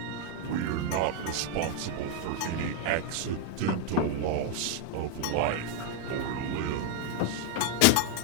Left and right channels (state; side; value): different; both; correlation 0.01